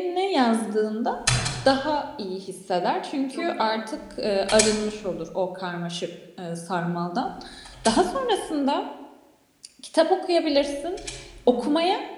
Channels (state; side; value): identical; both; correlation 1.00